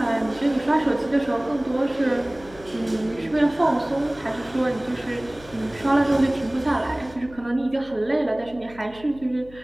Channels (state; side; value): noise; left; hum, 21 dB below the sound